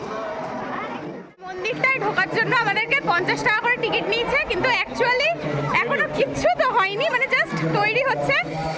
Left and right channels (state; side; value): identical; both; correlation 1.00